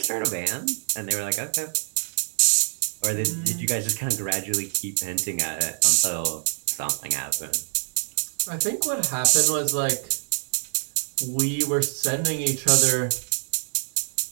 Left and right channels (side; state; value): left; silent; 62 dB below the other